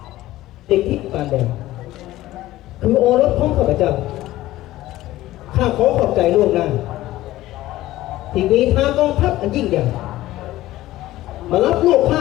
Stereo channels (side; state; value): right; quieter; 15.9 dB